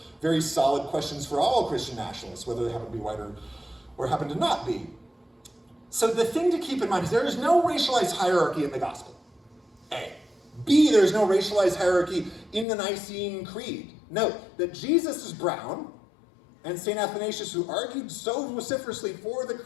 very solid questions for all Christian nationalists, whether they happen to be white or happen to not be. So the thing to keep in mind is there is no racialized hierarchy in the gospel, A. B, there's no racialized hierarchy in the Nicene Creed. Note that Jesus is brown, and St. Athanasius, who argued so vociferously for the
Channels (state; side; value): drops out; right; at 12.7 s